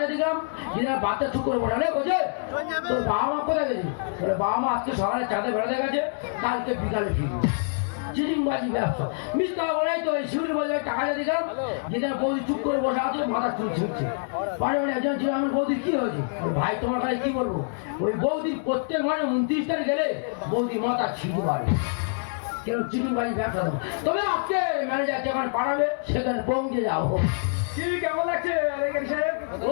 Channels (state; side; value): silent; right; digital silence